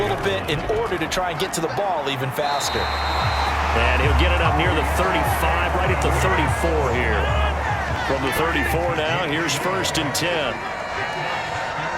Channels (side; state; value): both; identical; correlation 1.00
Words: bit, in order to try and get to the ball even faster. And he'll get it up near the 35, right at the 34 here. From the 34 now, here's 1st and 10.